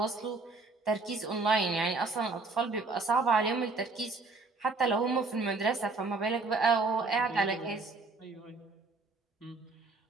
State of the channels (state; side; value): quieter; left; 3.7 dB